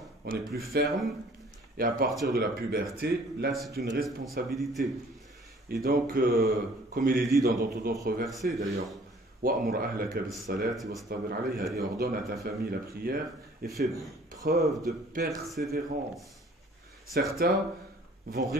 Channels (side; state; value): both; normal; correlation 0.54